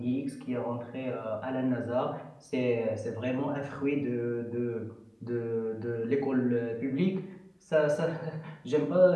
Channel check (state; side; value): identical; both; correlation 1.00